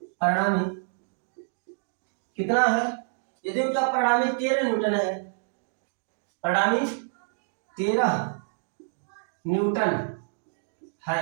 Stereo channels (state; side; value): silent; left; digital silence